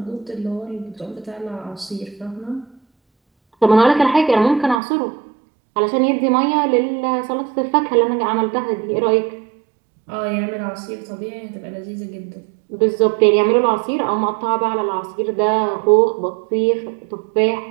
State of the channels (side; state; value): left; drops out; at 4.8 s